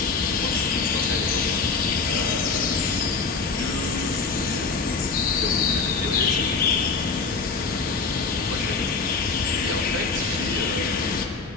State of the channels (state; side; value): quieter; right; 4.6 dB